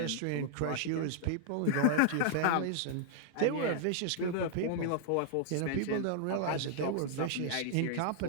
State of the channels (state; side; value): different; both; correlation -0.01